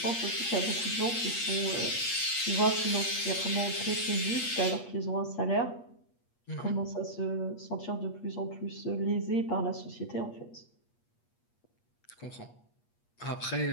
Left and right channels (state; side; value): late; right; 8.4 ms